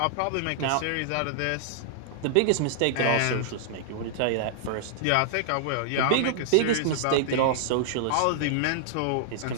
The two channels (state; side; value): different; both; correlation -0.01